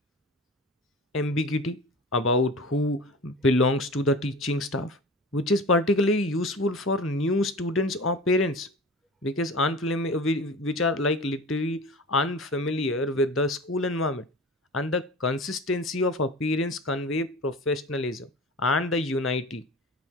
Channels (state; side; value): normal; both; correlation 0.35